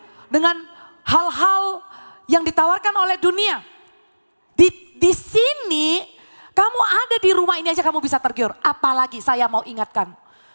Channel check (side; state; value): both; inverted; correlation -1.00